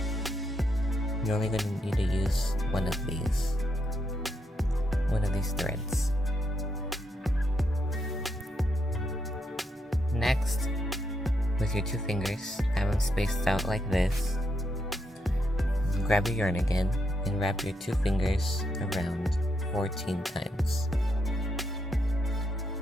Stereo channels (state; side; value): normal; both; correlation 0.80